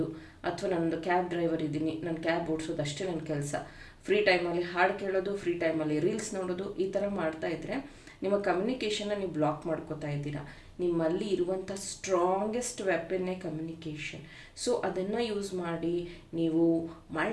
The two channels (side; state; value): both; identical; correlation 1.00